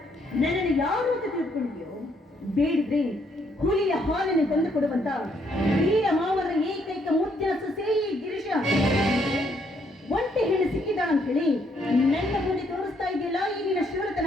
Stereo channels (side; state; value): both; normal; correlation 0.71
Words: ನನ್ನನ್ನು ಯಾರು ಅಂತ ತಿಳ್ಕೊಂಡಿದ್ಯೋ? ಬೇಡಿದ್ರೆ ಹುಲಿಯ ಹಾಲನ್ನು ತಂದು ಕೊಡುವಂತ ವೀರ ಮಾವರ ಏಕೈಕ ಮುದ್ದಿನ ಸೊಸೆ ಗಿರೀಶ ಒಂಟೆ ಹೆಣ್ಣು ಸಿಕ್ಕಿದಾಳ ಅಂತ ಹೇಳಿ ನನ್ನ ಮುಂದೆ ತೋರಿಸ್ತಾ ಇದೆಯಲ್ಲ ಈಗಿನ